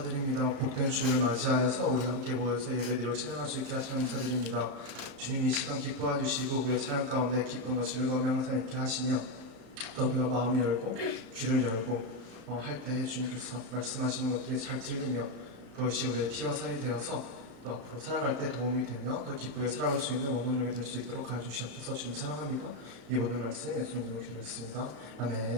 복된 주를 맞이하여서 우리 함께 모여서 예배드리고 찬양할 수 있게 하시며 감사드립니다. 주님 이 시간 기뻐해 주시고 우리의 찬양 가운데 기쁨과 즐거움이 항상 있게 하시며 또 우리가 마음을 열고 귀를 열고 할 때에 주님께서 말씀하시는 것들이 잘 들리며 그것이 우리의 피와 살이 되어서 또 앞으로 살아갈 때 도움이 되며 더 기쁘게 살아갈 수 있는 원동력이 될 수 있도록 하여 주시옵소서. 주님 사랑합니다. 이 모든 말씀 예수님 이름으로 기도했습니다.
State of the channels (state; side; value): late; left; 35 ms